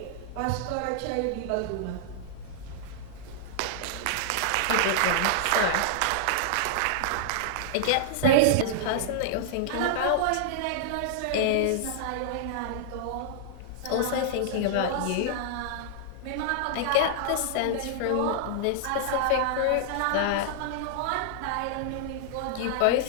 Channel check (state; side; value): different; both; correlation -0.01